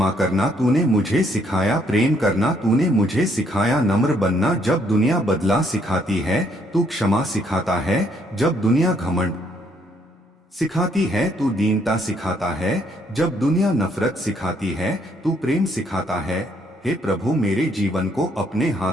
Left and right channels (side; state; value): both; normal; correlation 0.69